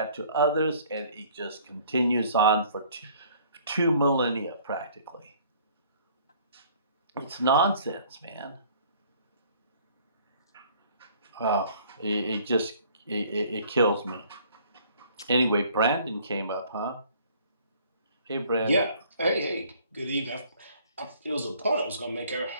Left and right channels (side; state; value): both; inverted; correlation -0.56